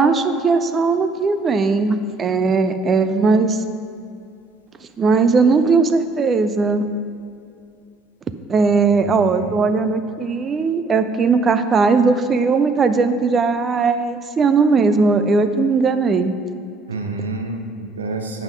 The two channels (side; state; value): left; quieter; 3.8 dB